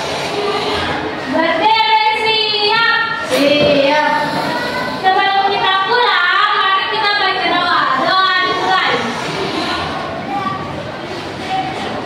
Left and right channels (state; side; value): identical; both; correlation 1.00